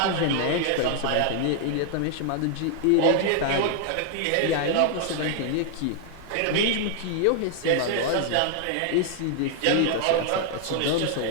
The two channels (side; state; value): both; different; correlation 0.00